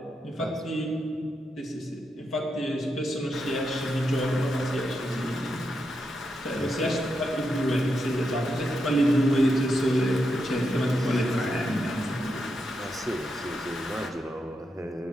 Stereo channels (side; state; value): both; normal; correlation 0.84